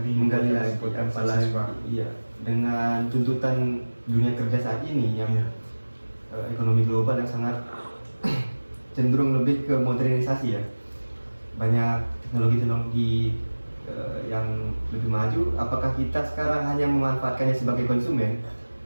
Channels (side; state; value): both; inverted; correlation -1.00